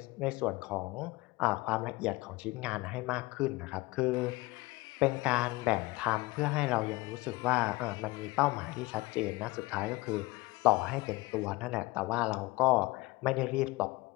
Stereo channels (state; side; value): quieter; right; 21.4 dB